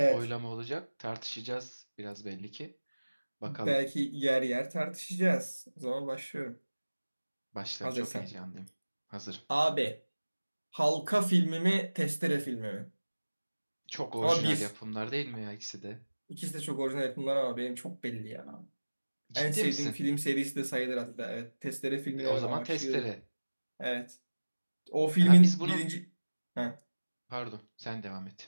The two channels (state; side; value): inverted; both; correlation -1.00